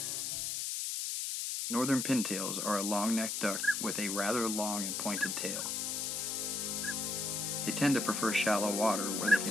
Northern pintails are a long-necked duck with a rather long and pointed tail. They tend to prefer shallow water where they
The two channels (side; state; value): left; noise; hiss, 1 dB below the sound